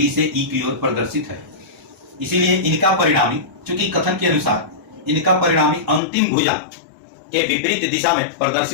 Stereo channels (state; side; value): drops out; right; at 6.0 s